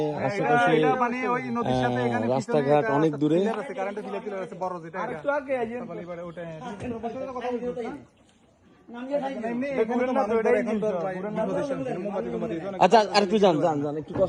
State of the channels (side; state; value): both; identical; correlation 1.00